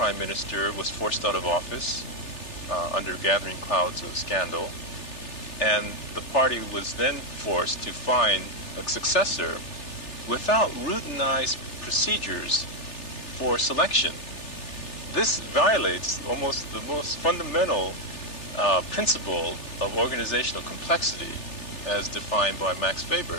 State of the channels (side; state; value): right; late; 3.4 ms